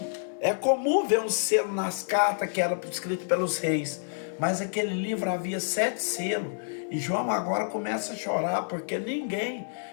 É comum ver um selo nas cartas que era escrito pelos reis. Mas aquele livro havia 7 selos. E João agora começa a chorar porque ninguém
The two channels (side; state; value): right; silent; digital silence